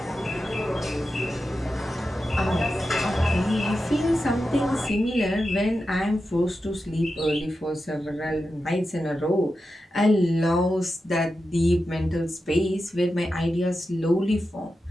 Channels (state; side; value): normal; both; correlation 0.90